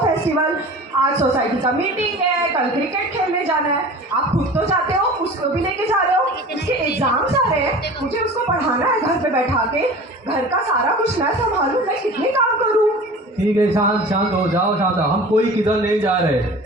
फेस्टिवल. आज सोसाइटी का मीटिंग है, कल क्रिकेट खेलने जाना है. आप खुद तो जाते हो, उसको भी लेके जा रहे हो. उसके एग्जाम्स आ रहे हैं, मुझे उसको पढ़ाना है घर पे बैठा के. घर का सारा कुछ मैं संभालूं, मैं कितने काम करूं. ठीक है, शांत हो जाओ, शांत हो. हम कोई किधर नहीं जा रहे.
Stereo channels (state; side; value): normal; both; correlation 0.39